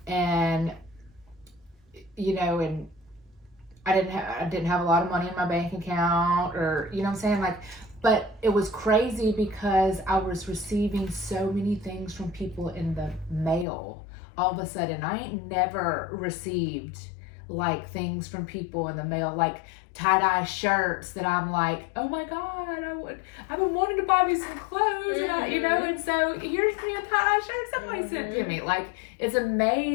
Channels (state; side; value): drops out; right; at 13.7 s